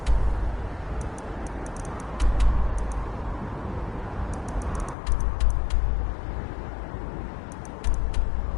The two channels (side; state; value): right; drops out; at 5.0 s